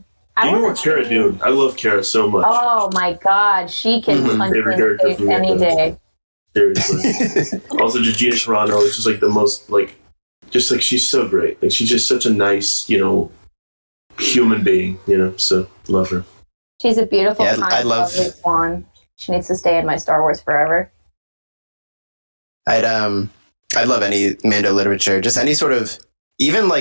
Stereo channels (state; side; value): inverted; both; correlation -1.00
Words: You know what Cara doing? I love Cara so much. Oh my god, she can punch me in the face any day. Seriously. Also, just Gina Carano is just like the most, she's so great. Like, she's just such a nice, human being, so love her. She's a beautiful, I love lovely swan. She needs to stay in my Star Wars forever. I'd love any Mando literature, just any sort of, even